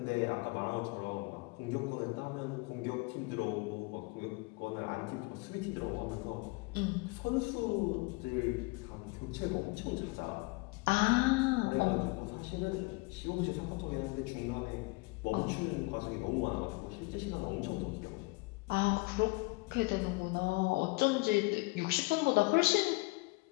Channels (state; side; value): quieter; right; 25.7 dB